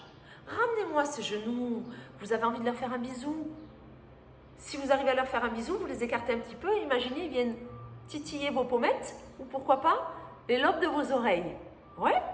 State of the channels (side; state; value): both; identical; correlation 1.00